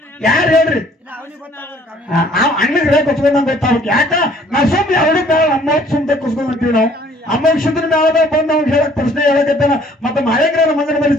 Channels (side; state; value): both; normal; correlation 0.58